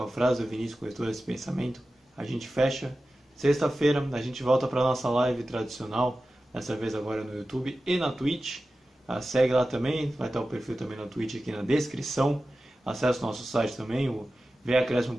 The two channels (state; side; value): normal; both; correlation 0.94